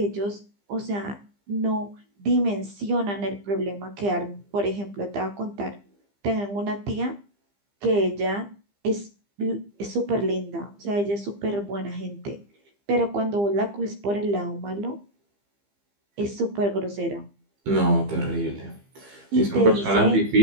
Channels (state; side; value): late; left; 15 ms